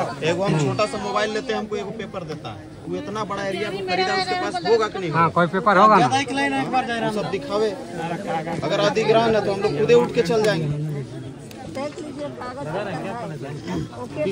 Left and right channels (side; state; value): both; identical; correlation 1.00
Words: एगो हम छोटा सा मोबाइल लेते हैं, हमको एगो पेपर देता है। वो इतना बड़ा एरिया को खरीदा, उसके पास होगा कि नहीं? हाँ, कोई पेपर होगा ना, सब दिखावे। अगर अधिग्रहण है तो हम लोग खुदे उठ के चल जाएंगे।